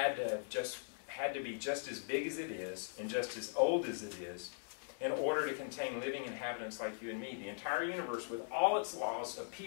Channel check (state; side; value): silent; right; digital silence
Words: to be just as big as it is and just as old as it is in order to contain living inhabitants like you and me. The entire universe, with all its laws,